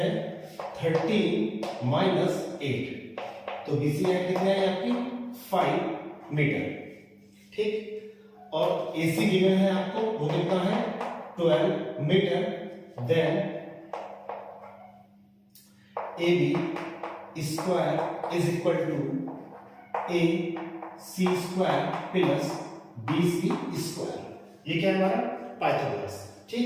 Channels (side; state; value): both; identical; correlation 1.00